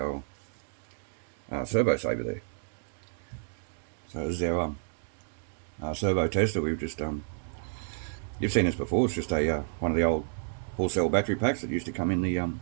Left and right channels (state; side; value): silent; left; digital silence